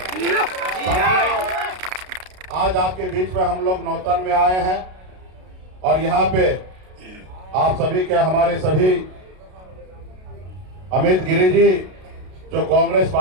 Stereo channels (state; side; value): late; left; 32 ms